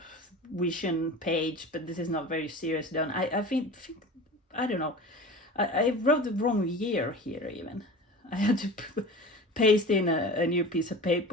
vision page, but this is not very serious done. I think I don't know. I wrote the wrong year here even. I had to paste in a new piece of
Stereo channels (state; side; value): normal; both; correlation 0.35